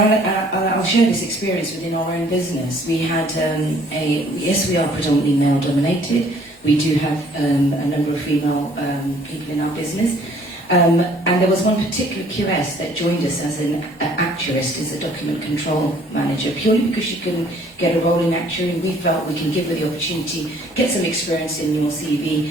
share this experience within our own business. We had yes, we are predominantly male dominated. We do have a number of female people in our business. And there was one particular QS that joined us as an actuarist, as a document control manager, purely because she couldn't get a role in actuary. We felt we can give her the opportunity, get some experience in your CV,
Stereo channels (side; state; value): both; normal; correlation 0.58